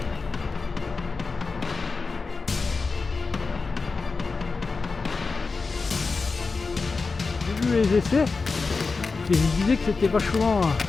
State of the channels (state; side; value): quieter; right; 4.3 dB